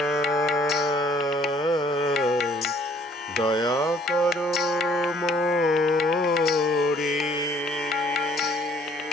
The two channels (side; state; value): both; normal; correlation 0.60